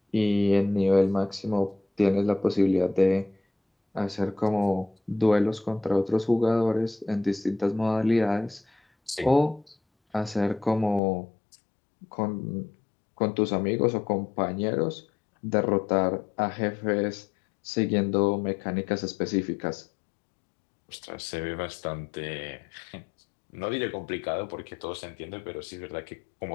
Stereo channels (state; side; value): drops out; right; at 11.0 s